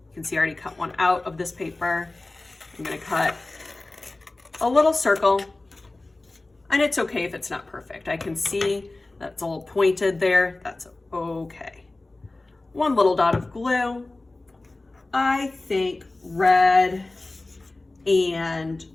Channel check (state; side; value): quieter; right; 3.0 dB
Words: You can see I already cut one out of this paper. I'm going to cut a little circle, and it's okay if it's not perfect. I can see that's a little pointed there. That's okay. One little dot of glue. I think red and